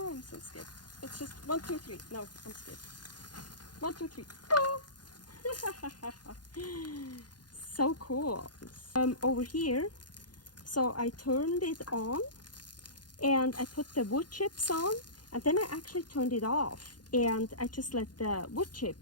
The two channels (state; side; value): late; right; 0.70 ms